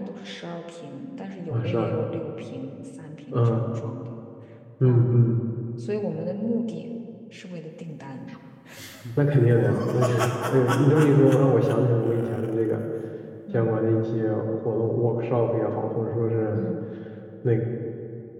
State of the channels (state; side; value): identical; both; correlation 1.00